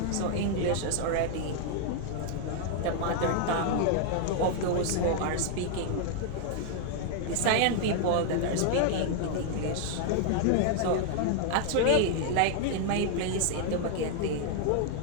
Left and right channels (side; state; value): both; different; correlation 0.00